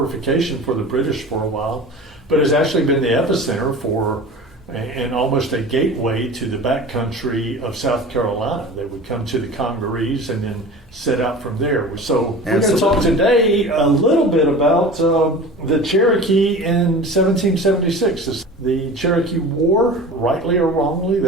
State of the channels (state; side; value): normal; both; correlation 0.37